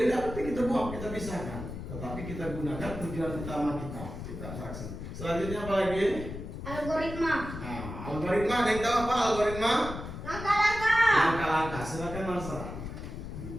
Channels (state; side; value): noise; left; rumble, 8 dB below the sound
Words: tidak penting, kita buang, kita pisahkan, tetapi kita gunakan tujuan utama kita abstraksi. Selanjutnya apa lagi? Algoritma. Nah, algoritma, ada yang tahu apa algoritma? Langkah-langkah. Silakan Marsa.